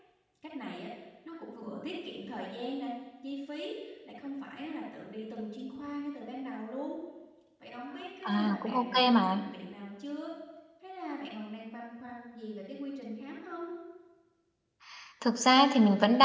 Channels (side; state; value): both; identical; correlation 1.00